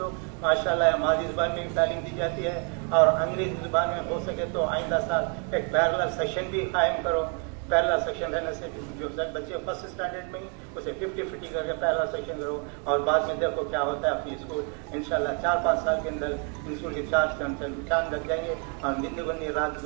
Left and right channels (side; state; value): left; quieter; 38.4 dB